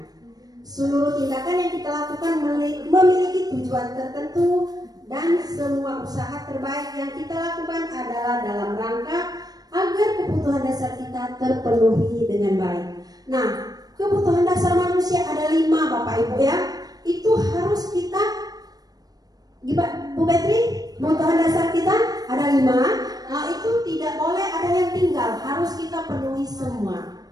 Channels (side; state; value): left; late; 0.19 ms